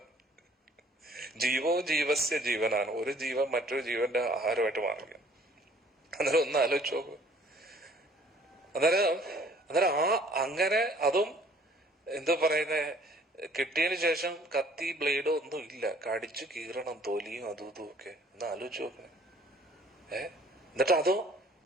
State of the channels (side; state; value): both; normal; correlation 0.56